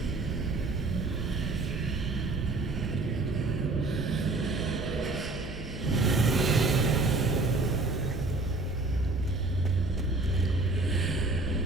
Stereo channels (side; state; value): left; quieter; 3.2 dB